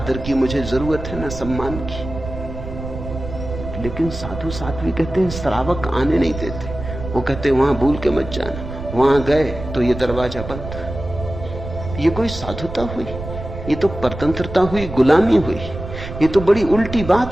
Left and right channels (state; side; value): noise; right; rumble, 9 dB below the sound